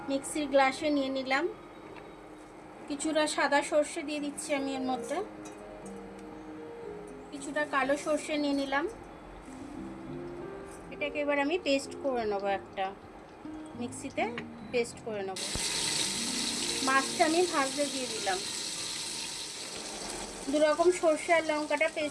মিক্সির গ্লাসে নিয়ে নিলাম। কিছুটা সাদা সর্ষে দিয়ে দিচ্ছি আমি এর মধ্যে, কিছুটা কালো সর্ষে নিয়ে নিলাম। এটাকে এবার আমি পেস্ট করে নেব, একটা মিক্সিতে পেস্ট করে নেব। মাছটা আমি ভাজতে দিয়ে দিলাম। দু রকম সর্ষে আর লঙ্কাটা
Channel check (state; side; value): identical; both; correlation 1.00